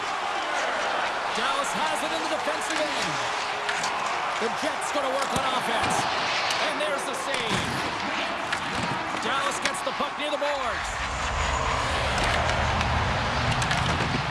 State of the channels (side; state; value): both; identical; correlation 1.00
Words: Dallas has it in the defensive end. The Jets going to work on offense. And there's the save. Dallas gets the puck near the boards.